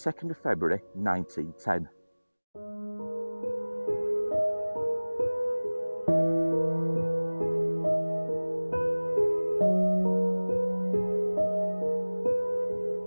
of February 1910.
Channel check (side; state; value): both; inverted; correlation -1.00